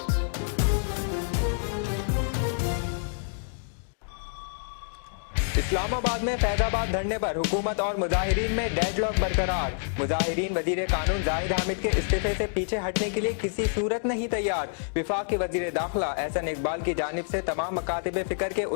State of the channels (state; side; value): silent; right; digital silence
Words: इस्लामाबाद में फैजाबाद धरने पर हुकूमत और मुजाहिरीन में डेडलॉक बरकरार। मुजाहिरीन वजीर कानून जाहिद हामिद के इस्तीफे से पीछे हटने के लिए किसी सूरत नहीं तैयार। विफाक के वजीर दाखिला एहसन इकबाल की जानिब से तमाम मकातिब फिक्र के